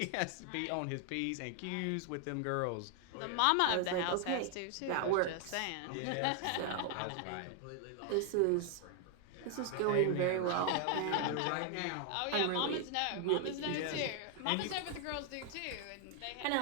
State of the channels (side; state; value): both; different; correlation 0.00